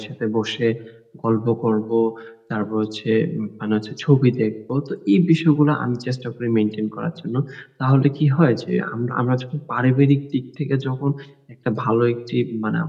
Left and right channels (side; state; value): both; identical; correlation 1.00